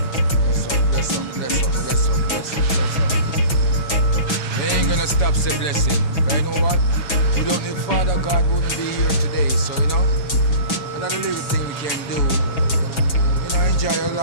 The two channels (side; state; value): right; late; 6.0 ms